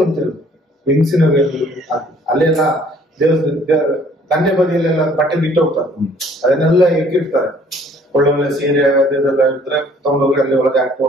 ಅಂತ ಹೇಳುದು, ಹೆಂಗಸಿನ ವೇಲು ಹಾಕಿ ಅಲ್ಲೆಲ್ಲ ದಂಡೆ ಬದಿಯಲ್ಲೆಲ್ಲ ಬಟ್ಟೆ ಬಿಟ್ಟು ಹೋಗ್ತಾರೆ, ಅದನ್ನೆಲ್ಲ ಇಟ್ಟಿರ್ತಾರೆ. ಒಳ್ಳೊಳ್ಳೆ ಸೀರೆ ಅದೆಲ್ಲ ಇದ್ರೆ ತಗೊಂಡೋಗಿ ಅಲ್ಲಿ ಒಳಗೆ ಹಾಕಿ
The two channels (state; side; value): normal; both; correlation 0.58